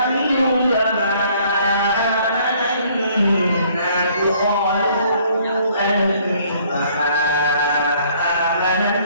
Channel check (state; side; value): inverted; both; correlation -0.61